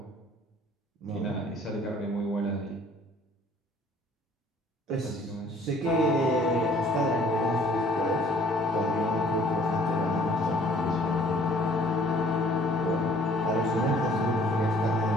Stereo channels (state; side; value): normal; both; correlation 0.56